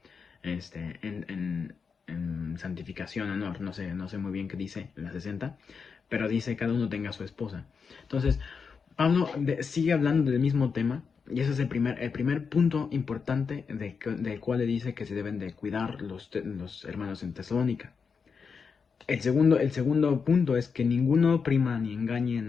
En santificación, honor, no sé muy bien qué dice en la 60, pero dice cada uno tenga su esposa. Entonces, Pablo sigue hablando del mismo tema, y ese es el primer punto importante del cual le dice que se deben de cuidar los hermanos en Tesalónica. El segundo punto es que ninguno oprima ni engañe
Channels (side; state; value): right; quieter; 5.7 dB